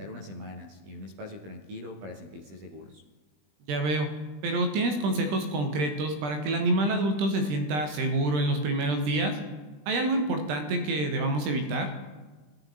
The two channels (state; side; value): late; left; 20 ms